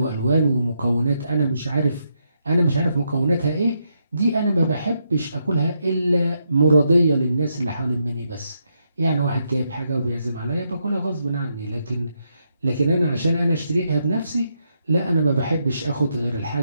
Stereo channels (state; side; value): inverted; both; correlation -0.80